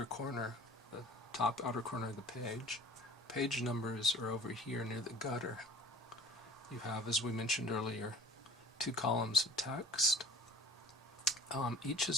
corner, the top outer corner of the page. Page numbers are over here near the gutter. You have, as we mentioned earlier, 2 columns of text. Each is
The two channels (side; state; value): both; normal; correlation 0.46